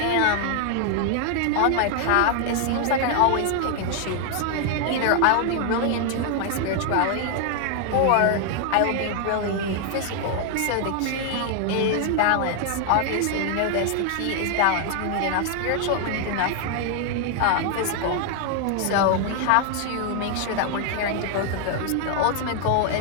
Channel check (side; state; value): both; different; correlation 0.00